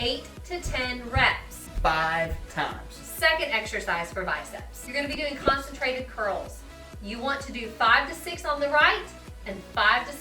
to 10 reps. 5 times. Second exercise for biceps. You're gonna be doing concentrated curls. You want to do 5 to 6 on the right and 5 to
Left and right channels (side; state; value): both; identical; correlation 1.00